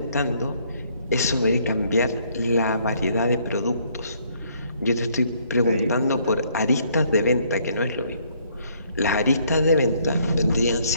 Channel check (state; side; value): inverted; both; correlation -0.66